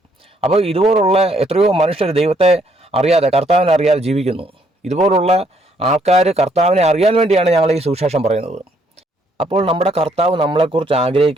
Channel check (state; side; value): normal; both; correlation 0.69